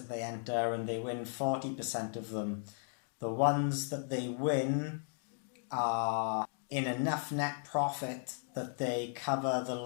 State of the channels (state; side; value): silent; right; 54 dB below the other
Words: they enter and they win 40% of them, the ones that they win are in enough net profit that they cover the